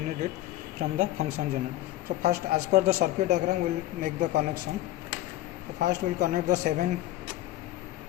it from the function generator. So first, as per the circuit diagram, we will make the connection. So first we will connect the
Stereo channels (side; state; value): right; quieter; 15.3 dB